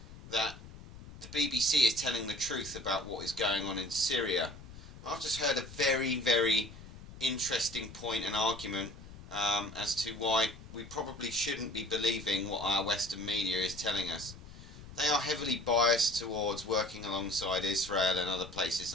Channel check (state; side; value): noise; left; rumble, 16 dB below the sound